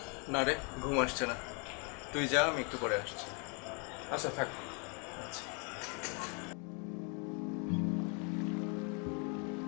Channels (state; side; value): quieter; right; 35.3 dB